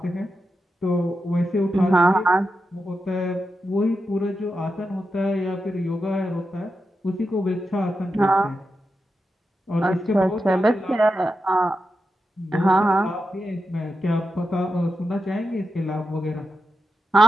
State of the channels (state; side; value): normal; both; correlation 0.88